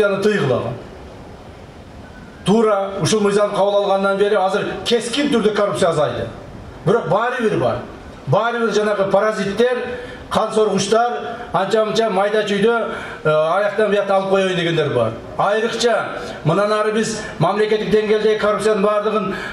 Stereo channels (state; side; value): identical; both; correlation 1.00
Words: тыйгылаган. Туура ушул мыйзам кабыл алгандан бери азыр кескин түрдө коррупция азайды. Бирок баары бир бар. Баары бир жанагы паразиттер, кан соргучтар, анча-мынча майда чүйдө аяктан буякта алып коёюн дегендер бар. Айрыкча мындан ары биз мамлекеттик деңгээлдеги коррупциянын баардыгын